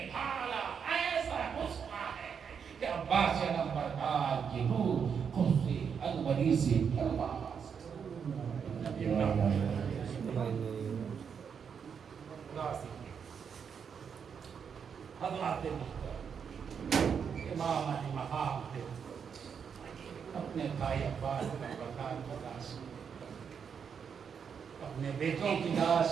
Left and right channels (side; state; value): left; quieter; 6.9 dB